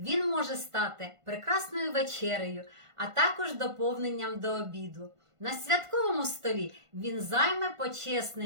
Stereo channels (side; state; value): left; late; 1.5 ms